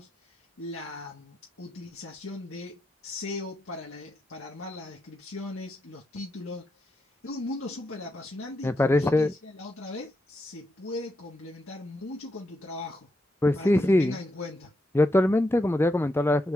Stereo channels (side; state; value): both; normal; correlation 0.84